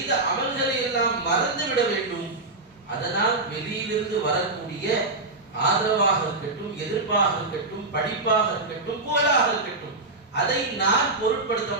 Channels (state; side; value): quieter; left; 3.0 dB